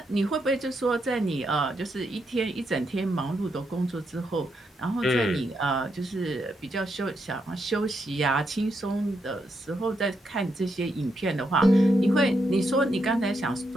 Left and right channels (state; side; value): normal; both; correlation 0.81